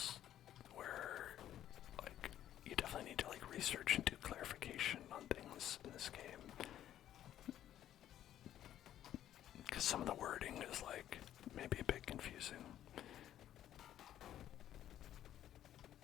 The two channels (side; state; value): right; quieter; 11.6 dB